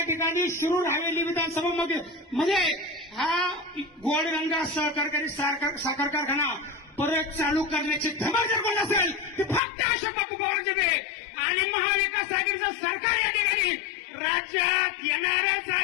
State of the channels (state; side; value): drops out; right; at 9.6 s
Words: ठिकाणी शिरूर हवेली विधानसभा मध्ये हा गोडगंगा सहकारी साखर कारखाना परत चालू करण्याची धमक जर कोण असेल ते फक्त अशोक बापू पवारांचे ते आणि महाविकास आघाडीचं सरकार या ठिकाणी राज्यात येणारच